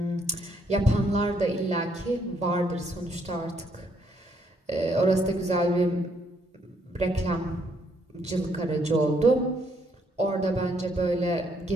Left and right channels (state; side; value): normal; both; correlation 0.71